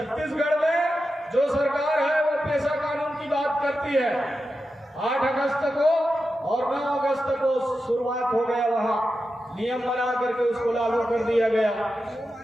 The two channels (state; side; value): normal; both; correlation 0.90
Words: में जो सरकार है वो पेशा कानून की बात करती है। 8 अगस्त को और 9 अगस्त को शुरुआत हो गया, वहां नियम बना करके उसको लागू कर दिया गया।